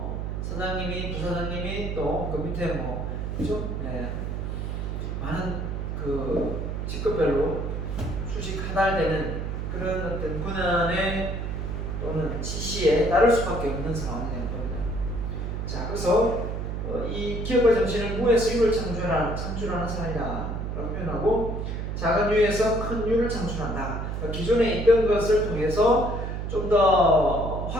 사장님이, 부사장님이 또 그 밑에 뭐 그죠? 네. 많은 그 직급별로 수직 하달되는 그런 어떤 권한의 또는 지시에 따를 수밖에 없는 상황이 되는 겁니다. 자, 그래서 이 기업의 정신은 무에서 유를 창출하는 사람이다라고 표현하고 작은 유에서 큰 유를 창출한다. 그러니까 기존에 있던 것을 통해서 좀 더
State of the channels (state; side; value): noise; right; hum, 3 dB below the sound